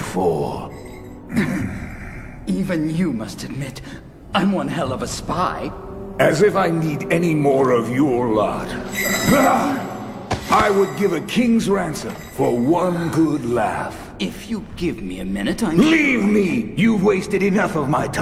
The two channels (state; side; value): identical; both; correlation 1.00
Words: for? Even you must admit, I'm one hell of a spy. As if I need any more of your lot. I would give a king's ransom for one good laugh. If you give me a minute, Leave me! You've wasted enough of my